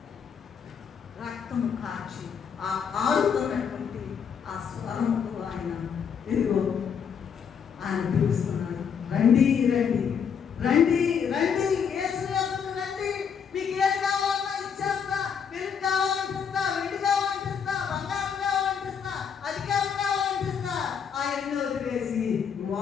కాచి ఆ కారుతున్నటువంటి ఆ స్వరముకు ఆయన ఇదిగో ఆయన పిలుస్తున్నాడు, రండి రండి రండి రండి, యేసు యొద్దకు రండి, మీకు ఏం కావాలన్నా ఇచ్చేస్తా, వెలుగు కావాలంటిస్తా, వెండి కావాలంటిస్తా, బంగారం కావాలంటిస్తా, అధికారం కావాలంటిస్తా. ఆయన్ని వదిలేసి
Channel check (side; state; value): right; quieter; 7.1 dB